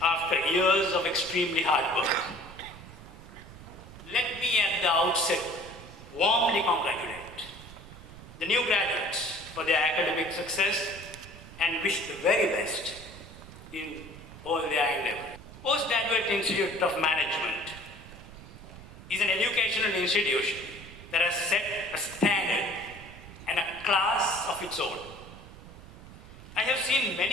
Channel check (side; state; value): right; noise; rumble, 16 dB below the sound